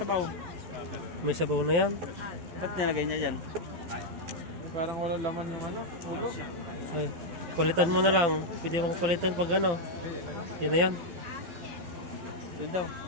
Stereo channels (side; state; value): left; late; 12 ms